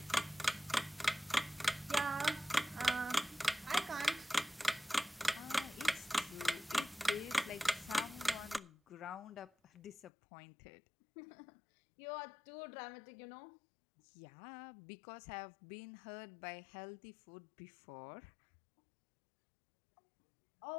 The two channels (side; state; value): right; drops out; at 10.1 s